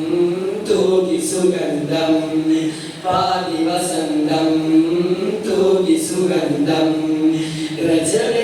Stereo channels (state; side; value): identical; both; correlation 1.00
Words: തൂകി സുഗന്ധം പാലി വസന്തം തൂകി സുഗന്ധം